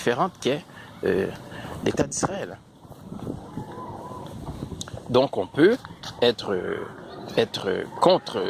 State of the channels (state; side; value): identical; both; correlation 1.00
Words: qu'est l'État d'Israël. Donc on peut être contre